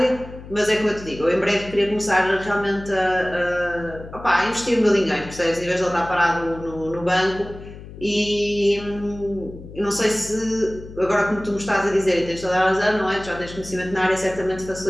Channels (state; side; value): noise; left; hum, 15 dB below the sound